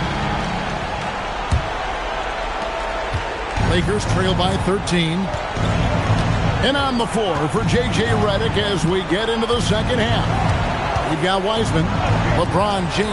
Lakers trail by 13. And on the floor for J.J. Redick as we get into the second half. We've got Wiseman. LeBron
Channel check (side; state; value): both; identical; correlation 1.00